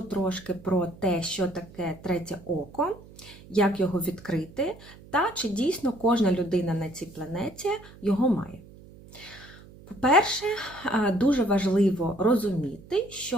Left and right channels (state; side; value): noise; right; hum, 20 dB below the sound